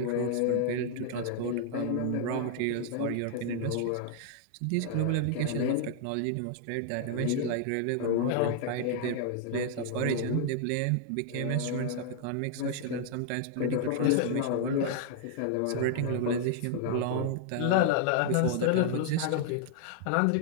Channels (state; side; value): different; both; correlation -0.01